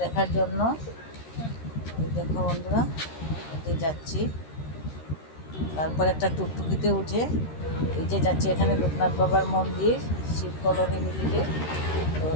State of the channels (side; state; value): right; late; 13 ms